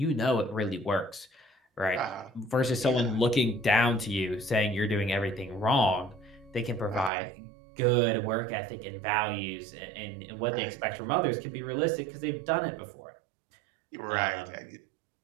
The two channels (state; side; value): drops out; left; at 7.1 s